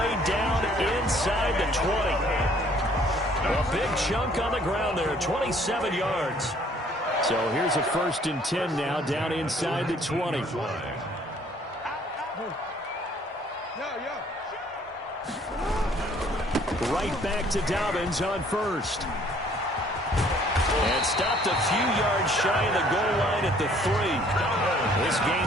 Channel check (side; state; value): both; normal; correlation 0.59